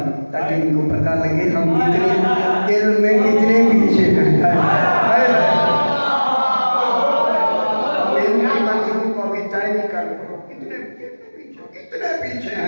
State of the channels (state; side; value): inverted; both; correlation -1.00